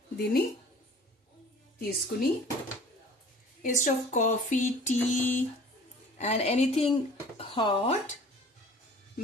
దీన్ని తీసుకుని instead of coffee, tea and anything hot,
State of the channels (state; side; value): normal; both; correlation 0.47